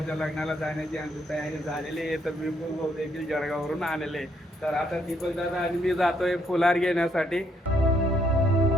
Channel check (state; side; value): normal; both; correlation 0.72